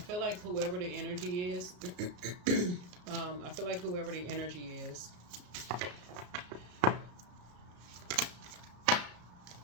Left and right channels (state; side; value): late; left; 34 ms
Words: like whoever the energy is, I feel like whoever the energy is,